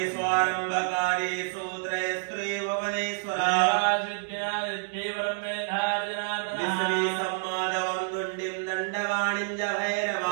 स्वारंभकारेषु त्रयस्त्रेव वनेश्वरा विश्वे सम्मादवं दुण्डिं दण्डवाणिं च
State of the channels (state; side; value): silent; left; digital silence